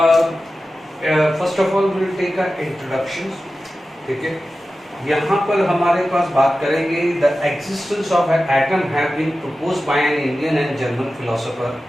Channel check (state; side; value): normal; both; correlation 0.94